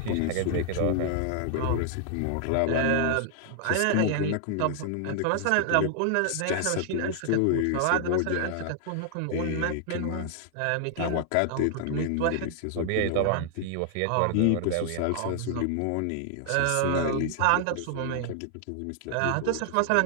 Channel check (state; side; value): different; both; correlation 0.00